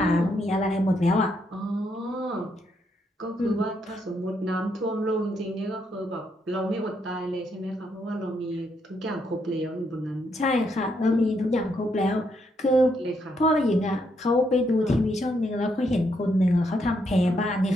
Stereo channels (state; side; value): normal; both; correlation 0.76